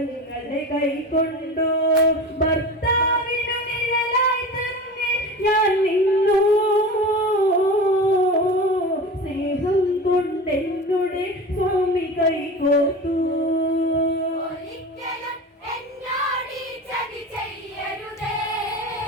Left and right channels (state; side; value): normal; both; correlation 0.31